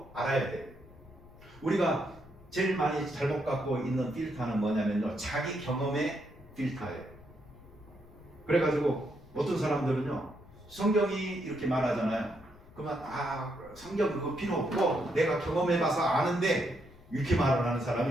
알아야 돼요. 우리가 제일 많이 잘못 갖고 있는 필터는 뭐냐면요, 자기 경험의 필터예요. 그래가지고 어떤 사람들은요, 성경이 이렇게 말하잖아요. 그러면 성경 그거 필요 없고 내가 경험해봐서 아는데, 이렇게 말을 하는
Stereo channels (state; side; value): noise; left; rumble, 22 dB below the sound